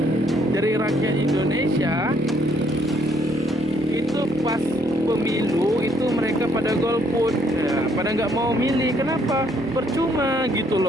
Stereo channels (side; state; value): both; normal; correlation 0.68